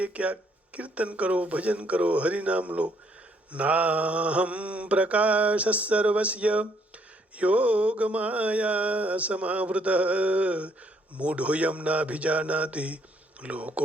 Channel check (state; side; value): normal; both; correlation 0.68